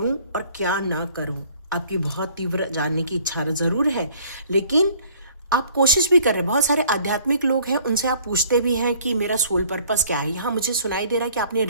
और क्या ना करूं। आपकी बहुत तीव्र जानने की इच्छा जरूर है, लेकिन आप कोशिश भी कर रहे हैं। बहुत सारे आध्यात्मिक लोग हैं, उनसे आप पूछते भी हैं कि मेरा सोल पर्पस क्या है। यहाँ मुझे सुनाई दे रहा है कि आपने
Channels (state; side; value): inverted; both; correlation -0.56